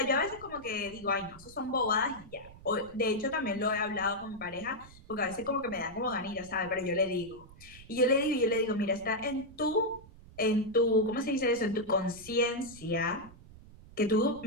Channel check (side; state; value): right; noise; rumble, 20 dB below the sound